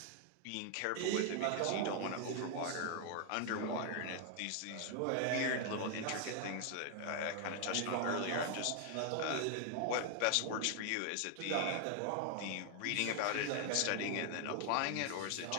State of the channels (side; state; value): both; different; correlation 0.00